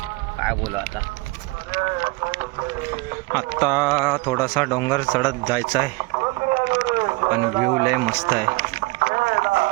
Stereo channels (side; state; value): left; quieter; 24.4 dB